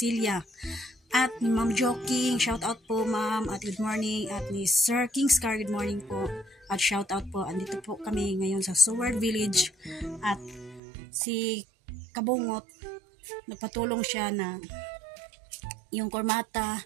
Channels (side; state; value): left; drops out; at 10.8 s